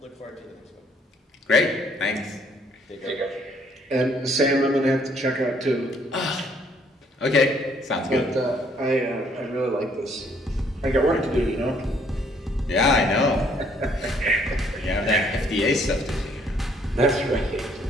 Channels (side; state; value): both; normal; correlation 0.65